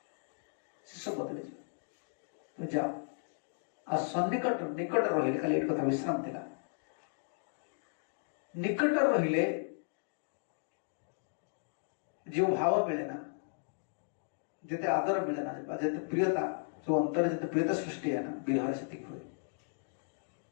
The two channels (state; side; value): silent; right; digital silence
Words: सब बदल तुम जाओ आ सन्निकट निकट रही खाली एक कथा विश्राम थिला निकट रहिले जो भाव मिले ना जिते आदर मिले ना जिते प्रियता जो अंतर जिते प्रियता सृष्टि है ना विरह से हुए